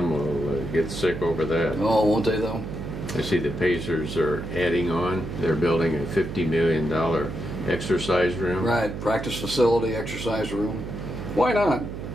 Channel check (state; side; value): noise; right; hum, 8 dB below the sound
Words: get sick over that. Oh, won't they though? I see the Pacers are adding on. They're building a $50 million exercise room. Right. Practice facility, exercise room. Why not?